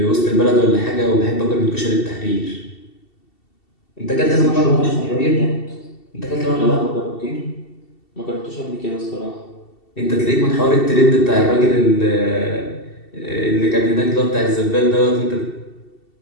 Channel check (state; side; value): late; right; 2.7 ms